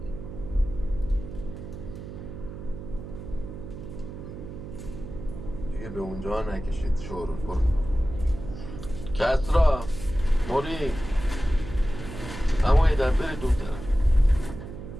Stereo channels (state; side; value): noise; right; hum, 10 dB below the sound